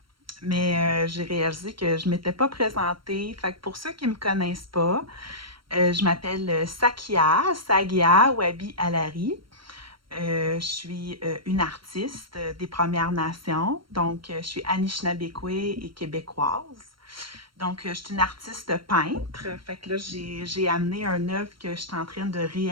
mais j'ai réalisé que je ne m'étais pas présentée. Fait que pour ceux qui ne me connaissent pas, je m'appelle Sagia Wabi Alari. Je suis une artiste des Premières Nations, donc je suis Anishinabekwe et québécoise. Donc, je suis une artiste peintre. Fait que là, j'ai amené un œuvre que je suis en train de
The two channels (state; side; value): late; left; 0.73 ms